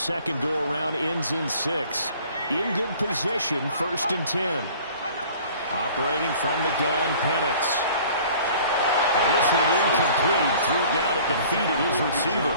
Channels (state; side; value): inverted; both; correlation -0.50